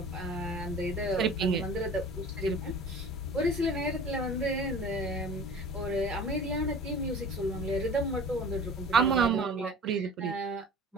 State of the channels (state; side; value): normal; both; correlation 0.42